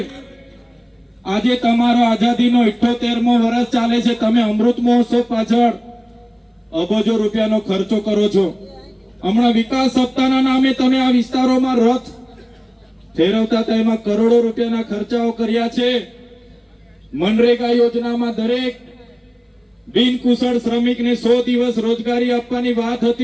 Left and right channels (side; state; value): both; identical; correlation 1.00